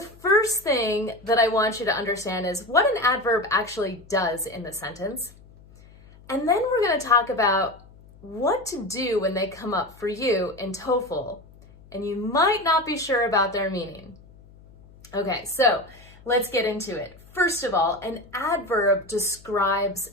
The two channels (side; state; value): left; noise; hum, 24 dB below the sound